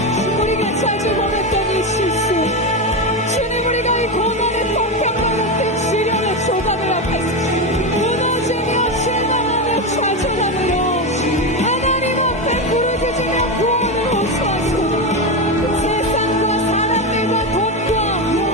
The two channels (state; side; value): normal; both; correlation 0.14